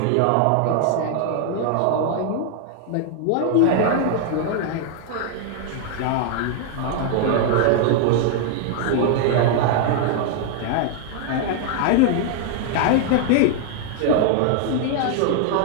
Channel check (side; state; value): both; different; correlation 0.00